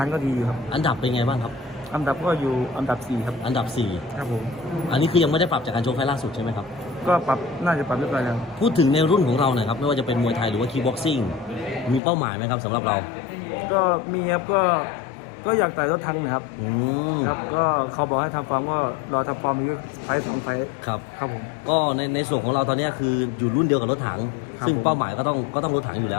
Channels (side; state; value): right; drops out; at 12.0 s